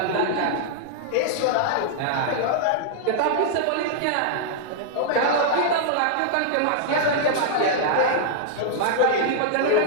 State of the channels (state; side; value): different; both; correlation -0.01